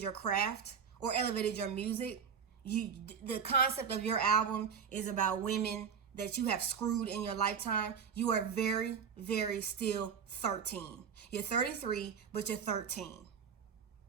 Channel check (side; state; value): left; quieter; 6.9 dB